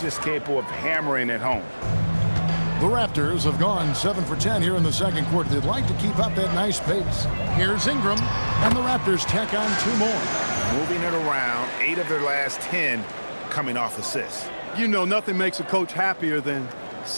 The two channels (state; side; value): inverted; both; correlation -1.00